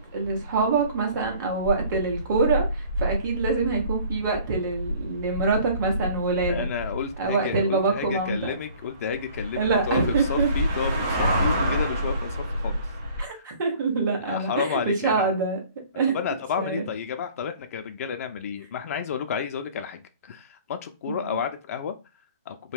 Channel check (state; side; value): inverted; both; correlation -0.51